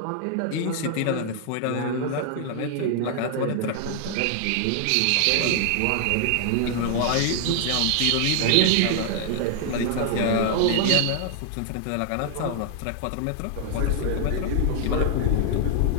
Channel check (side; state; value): both; different; correlation 0.00